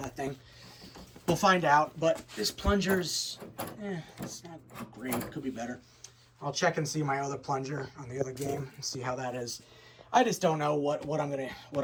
that thing. We'll find out, but this plunger's, it's not great. It could be better. I'll check and see my other plunger on the other game and see how that is. I just don't know what I'm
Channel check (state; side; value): identical; both; correlation 1.00